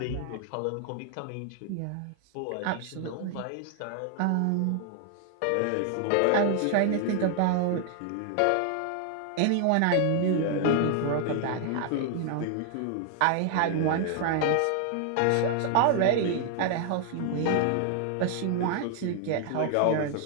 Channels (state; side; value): different; both; correlation 0.00